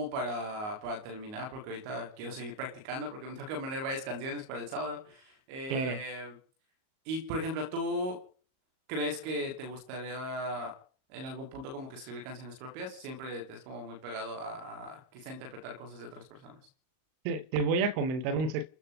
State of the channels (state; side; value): late; left; 38 ms